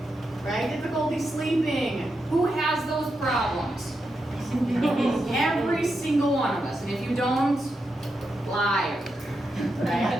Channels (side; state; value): both; normal; correlation 0.86